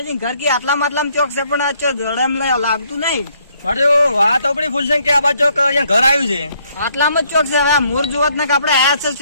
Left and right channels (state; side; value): inverted; both; correlation -0.68